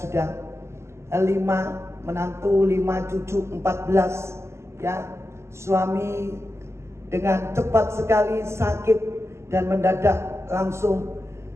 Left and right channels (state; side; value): late; left; 0.13 ms